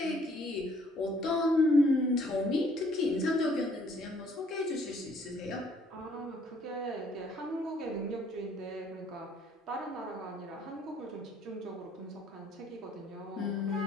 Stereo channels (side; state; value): both; normal; correlation 0.62